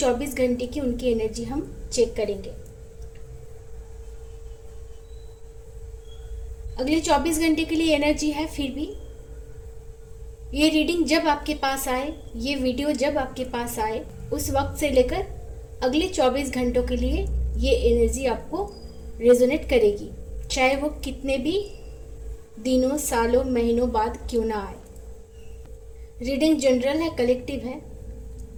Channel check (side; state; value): both; identical; correlation 1.00